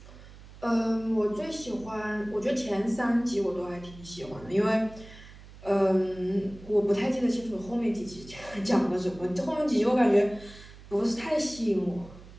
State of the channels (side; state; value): right; noise; hum, 19 dB below the sound